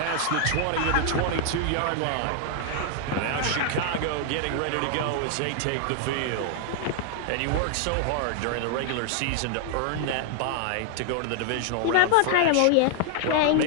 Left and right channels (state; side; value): different; both; correlation 0.00